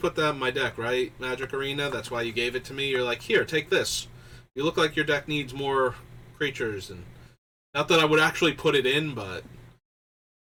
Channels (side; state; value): both; identical; correlation 1.00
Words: that in my deck, right? Magic Arena, that's why you gave it to me. You're like, here, take this. You look like your deck needs more creatures, and not that I would actually put it in, but